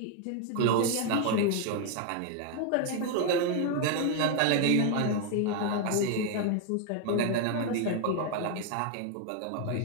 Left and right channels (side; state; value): both; different; correlation 0.01